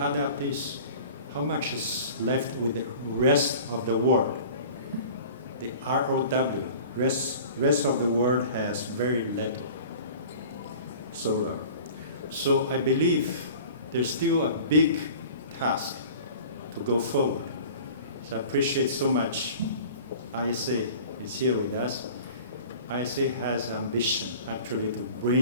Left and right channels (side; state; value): both; inverted; correlation -0.42